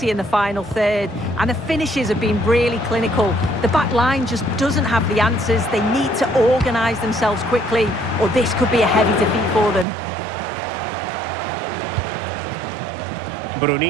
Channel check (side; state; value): left; drops out; at 9.9 s